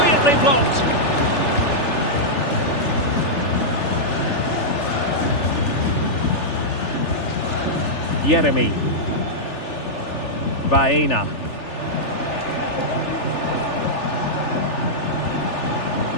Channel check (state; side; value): late; right; 3.4 ms